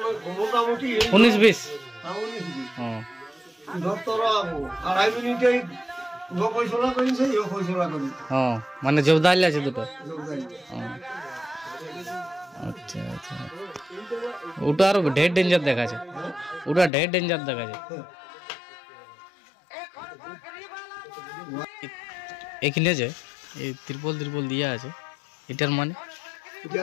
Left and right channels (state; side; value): drops out; right; at 16.9 s